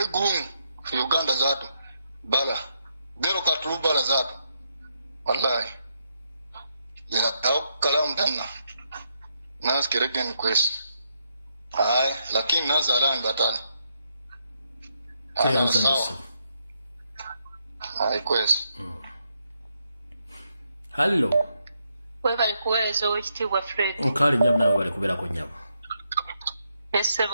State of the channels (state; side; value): inverted; both; correlation -0.79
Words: gumu fi Uganda zatu. Bala. Dero katulu bala zatu. Wallahi. Ya kalamu tena. Nas keregen kwesi. Lakini nazalan batani. Kwesi. Hello. Webali kuweereza owekitiibwa Fred. Nkali nyamu nawe bali kubeerako nyamu.